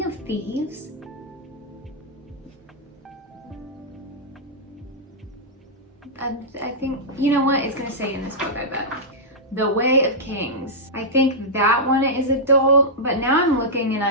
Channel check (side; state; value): both; normal; correlation -0.10